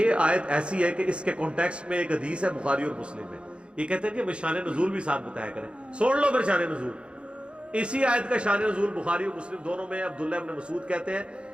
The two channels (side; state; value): left; late; 0.057 ms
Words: آیت ایسی ہے کہ اس کے کانٹیکسٹ میں ایک حدیث ہے بخاری اور مسلم میں، یہ کہتے ہیں کہ شان نزول بھی ساتھ بتایا کریں، سوڑ لو پھر شان نزول۔ اسی آیت کا شان نزول بخاری اور مسلم دونوں میں عبداللہ ابن مسعود کہتے ہیں